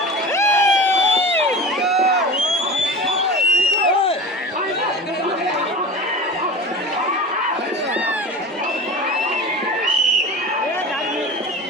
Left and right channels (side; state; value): both; normal; correlation 0.34